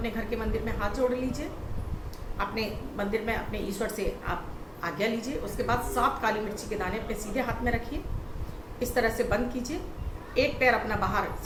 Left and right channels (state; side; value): identical; both; correlation 1.00